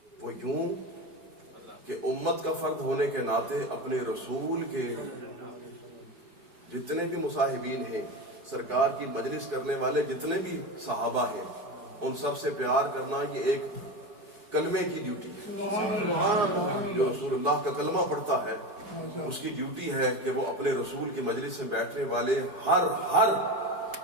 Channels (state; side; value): late; left; 4.6 ms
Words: وہ یوں کہ امت کا فرد ہونے کے ناطے اپنے رسول کے جتنے بھی مصاحبین ہیں، سرکار کی مجلس کرنے والے جتنے بھی صحابہ ہیں، ان سب سے پیار کرنا یہ ایک کلمے کی ڈیوٹی ہے. جو رسول اللہ کا کلمہ پڑھتا ہے اس کی ڈیوٹی ہے کہ وہ اپنے رسول کی مجلس میں بیٹھنے والے ہر